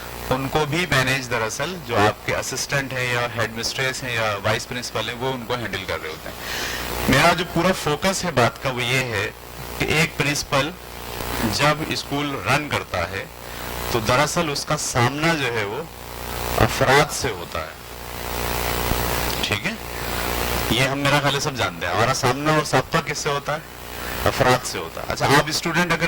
ان کو بھی مینیج دراصل جو آپ کے اسسٹنٹ ہیں یا ہیڈ مسٹریس ہیں یا وائس پرنسپل ہیں وہ ان کو ہینڈل کر رہے ہوتے ہیں. میرا جو پورا فوکس ہے بات کا وہ یہ ہے کہ ایک پرنسپل جب اسکول رن کرتا ہے تو دراصل اس کا سامنا جو ہے وہ افراد سے ہوتا ہے. ٹھیک ہے, یہ ہم میرا خیال ہے سب جانتے ہیں. ہمارا سامنا اور سابقہ کس سے ہوتا ہے؟ افراد سے ہوتا ہے. اچھا, آپ اسٹوڈنٹ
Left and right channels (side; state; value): both; identical; correlation 1.00